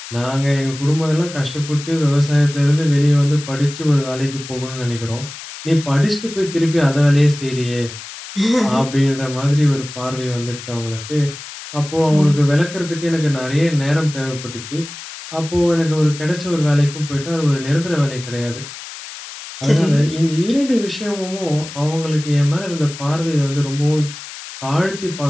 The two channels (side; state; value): left; noise; hiss, 13 dB below the sound